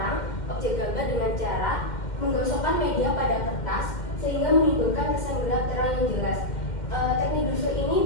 objek gambar dengan cara menggosokkan media pada kertas sehingga menimbulkan kesan gelap terang yang jelas. Teknik Dussel ini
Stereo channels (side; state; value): right; late; 2.1 ms